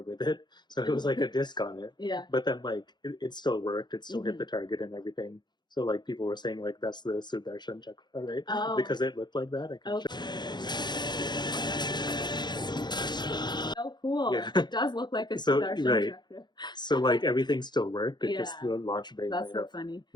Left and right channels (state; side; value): late; right; 0.21 ms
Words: with it, so it was like a disc on it. Yeah. But then like it still worked. It still hit the target and everything. So like people were saying like that's the Sudarshan Chakra, right? Oh. Because it looked like that. I can show. Oh, cool. Yeah. It does look like a So, Sudarshan right. Chakra. So like everything still worked. It Yeah. just the launch bay That's might so have funny.